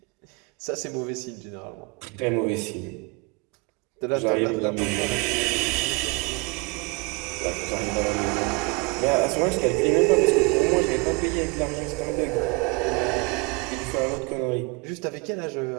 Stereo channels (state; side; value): quieter; left; 28.6 dB